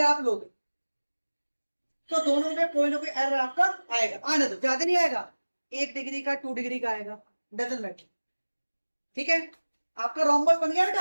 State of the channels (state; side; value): inverted; both; correlation -1.00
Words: आप लोगे, तो दोनों में कोई ना कोई एरर आपका आएगा। आने दो, ज्यादा नहीं आएगा, 1 डिग्री का 2 डिग्री का आएगा, डजंट मैटर, ठीक है। आपका रोम्बस बन गया